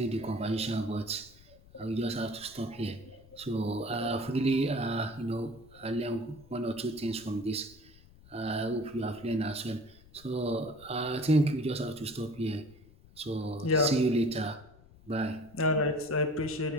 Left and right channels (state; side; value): noise; left; rumble, 23 dB below the sound